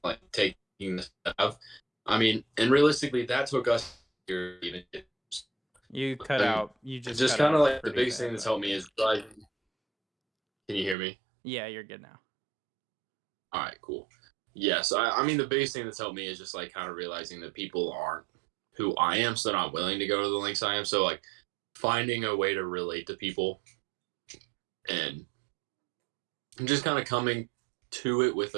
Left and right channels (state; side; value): drops out; left; at 11.0 s